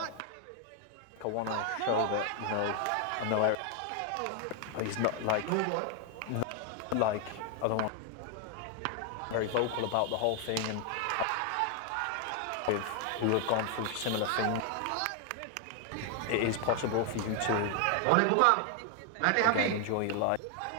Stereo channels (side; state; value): both; different; correlation 0.00